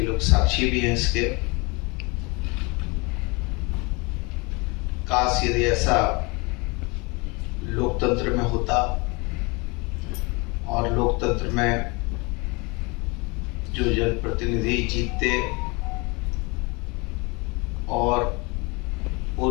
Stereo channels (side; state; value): right; quieter; 27.9 dB